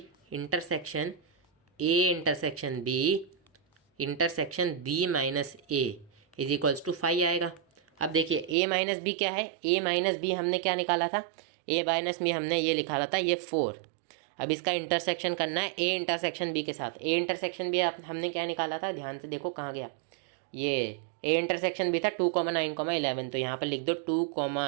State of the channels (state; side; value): drops out; left; at 8.6 s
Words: intersection A intersection B intersection B minus A is equals to phi आएगा। अब देखिए ए माइनस बी क्या है, ए माइनस बी हमने क्या निकाला था, ए माइनस बी हमने ये निकाला था ये 4। अब इसका इंटरसेक्शन करना है ए इंटरसेक्शन बी के साथ। ए इंटरसेक्शन बी हमने क्या निकाला था, ध्यान से देखो कहाँ गया, ये ए इंटरसेक्शन भी था 2,9,11, तो यहाँ पर लिख दो